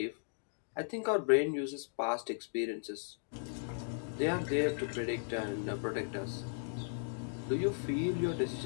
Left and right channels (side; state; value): right; silent; digital silence